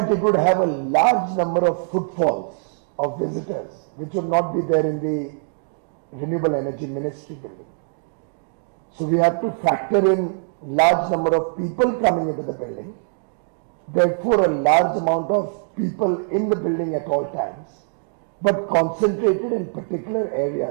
it would have a large number of footfalls of visitors, which would not be there in the Renewable Energy Ministry building. So we have to factor in large number of people coming into the building, therefore a large amount of people in the building at all times, but concentrated in particular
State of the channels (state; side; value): silent; left; digital silence